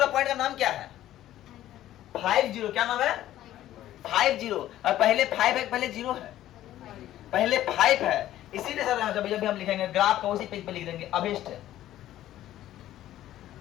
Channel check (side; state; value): right; quieter; 13.3 dB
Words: पॉइंट का नाम क्या है? 50। क्या नाम है? 50। और पहले 5 है, पहले 0 है, पहले 5 है। इसीलिए सर जब भी हम लिखेंगे ग्राफ को उसी पेज पे लिख देंगे अभिष्ट